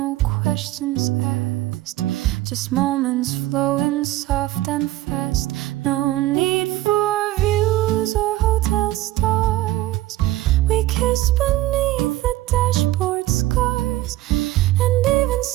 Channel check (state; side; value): quieter; left; 16.3 dB